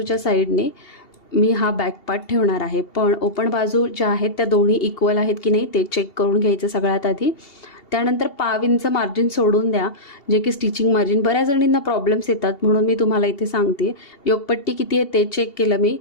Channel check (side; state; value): right; late; 2.8 ms